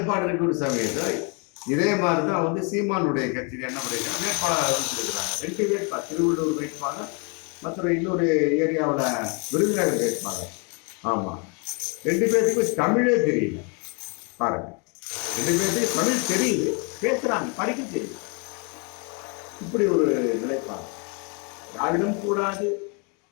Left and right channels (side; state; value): right; quieter; 34.8 dB